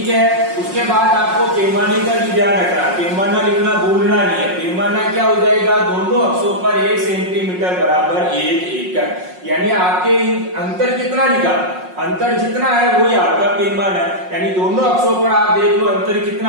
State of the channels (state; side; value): late; left; 5.5 ms